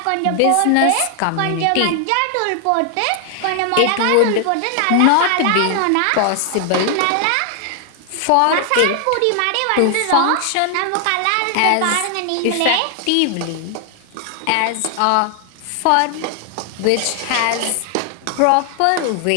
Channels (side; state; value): both; different; correlation 0.00